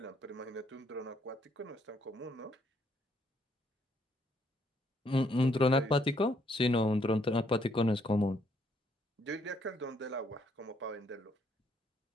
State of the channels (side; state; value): both; normal; correlation 0.70